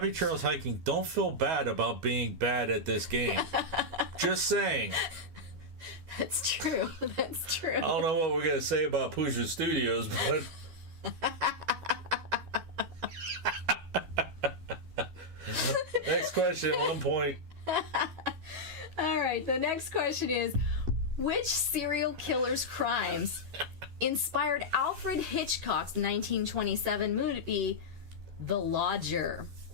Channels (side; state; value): left; late; 12 ms